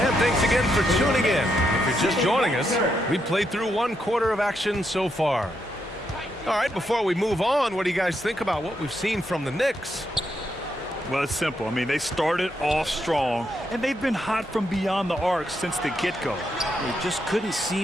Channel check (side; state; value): both; normal; correlation 0.80